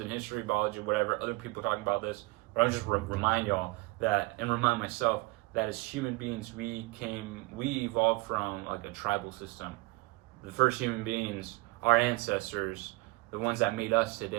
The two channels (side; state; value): left; quieter; 23.1 dB